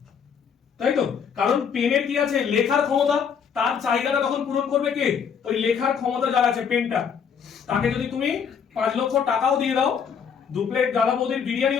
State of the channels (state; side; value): quieter; right; 7.0 dB